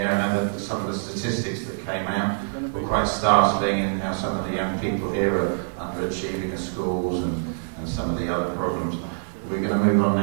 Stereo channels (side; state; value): left; silent; 60 dB below the other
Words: I know that some of the statistics that came out were quite startling in how some of the young people here are underachieving at schools and some of the other problems. We're going to move on